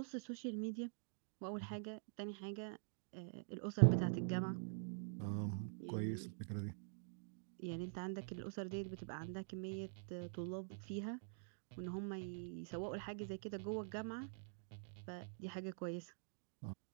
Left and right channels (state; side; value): silent; left; digital silence